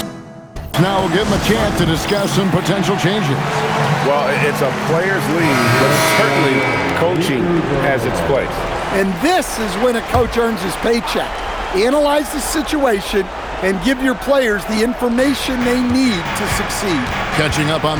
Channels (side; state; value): both; identical; correlation 1.00